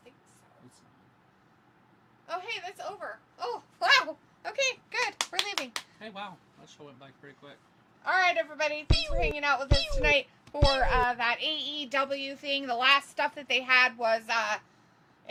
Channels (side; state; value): both; identical; correlation 1.00